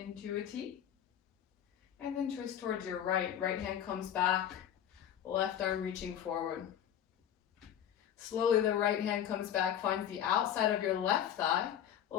a T. And then twist towards your right. Right hand comes back. Left arm reaching forward. Slowly the right hand comes back, finds the outside of your left thigh.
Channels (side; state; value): right; quieter; 10.0 dB